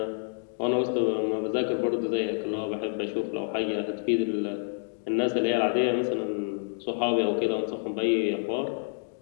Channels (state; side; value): silent; right; digital silence